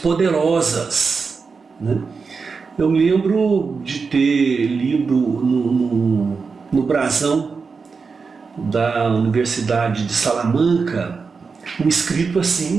né? Eu me lembro de ter lido no brasão da Universidade de Salamanca um escrito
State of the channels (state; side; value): quieter; left; 5.0 dB